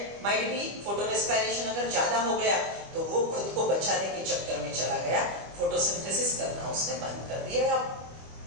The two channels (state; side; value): late; left; 25 ms